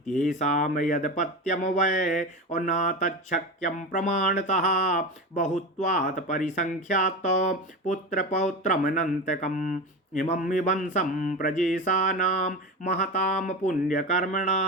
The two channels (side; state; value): both; normal; correlation 0.24